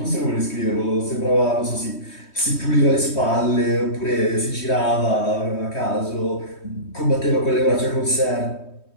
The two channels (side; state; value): right; late; 3.2 ms